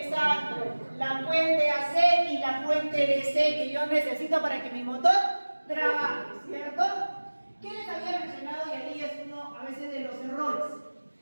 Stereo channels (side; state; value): both; inverted; correlation -1.00